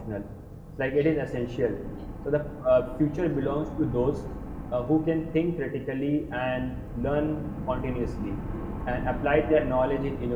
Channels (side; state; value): both; identical; correlation 1.00